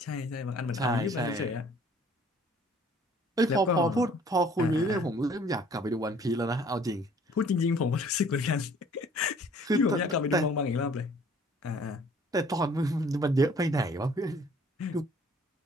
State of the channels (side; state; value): both; normal; correlation 0.55